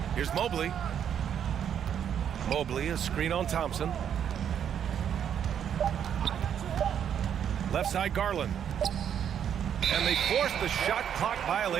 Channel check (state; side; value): quieter; left; 8.8 dB